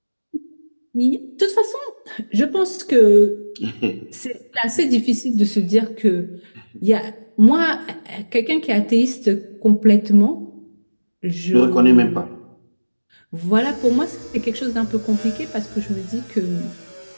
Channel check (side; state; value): both; inverted; correlation -1.00